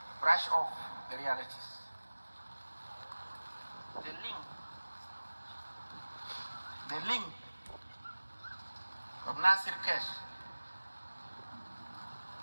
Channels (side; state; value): both; inverted; correlation -1.00